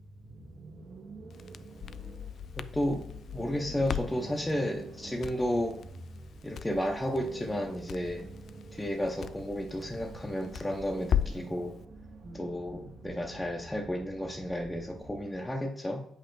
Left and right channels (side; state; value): both; normal; correlation 0.86